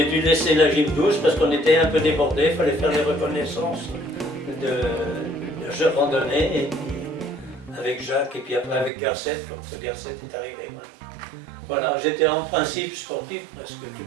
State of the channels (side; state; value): left; drops out; at 8.9 s